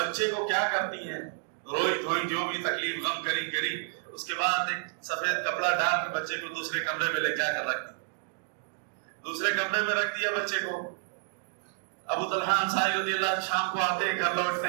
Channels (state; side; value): silent; left; 58 dB below the other